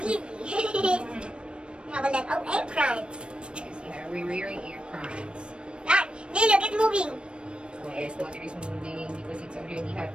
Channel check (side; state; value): left; late; 0.056 ms